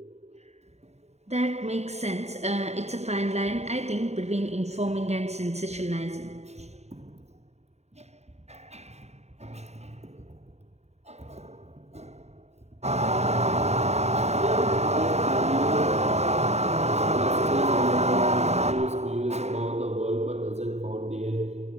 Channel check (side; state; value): left; late; 0.32 ms